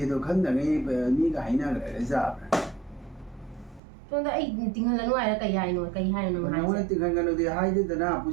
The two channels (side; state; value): left; drops out; at 3.8 s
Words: tu kan da ngai mi ka hai na ga za. So da ai tinghan la no ai ka yai no ka hai no hai. Nó tiếng Hàn thì hai chứ na